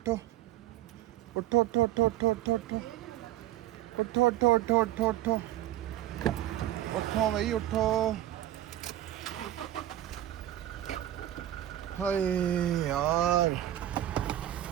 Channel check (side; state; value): left; quieter; 13.2 dB